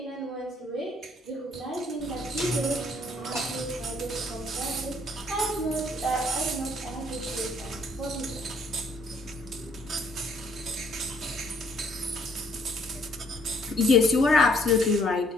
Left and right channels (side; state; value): both; normal; correlation 0.65